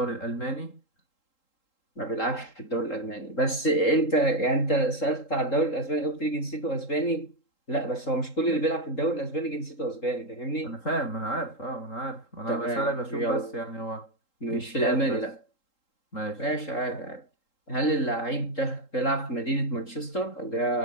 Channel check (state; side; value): late; right; 3.8 ms